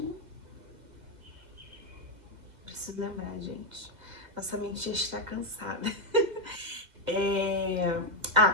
Preciso lembrar, gente. Nossa mente já está cansada.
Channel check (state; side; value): late; left; 2.0 ms